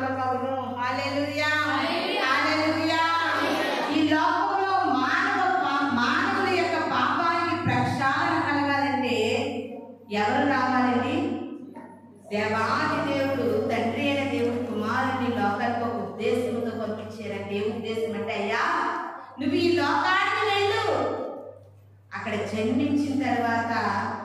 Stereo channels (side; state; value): both; identical; correlation 1.00